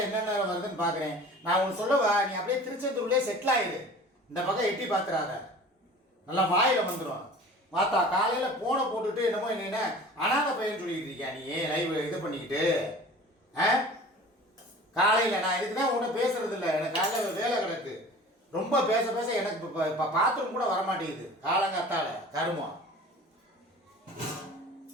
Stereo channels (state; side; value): normal; both; correlation 0.42